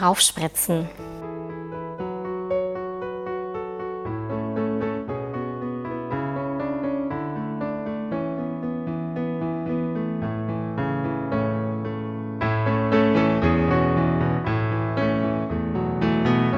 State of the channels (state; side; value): identical; both; correlation 1.00